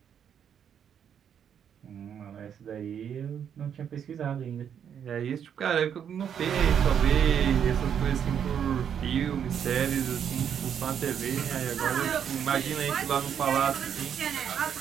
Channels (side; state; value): left; quieter; 8.4 dB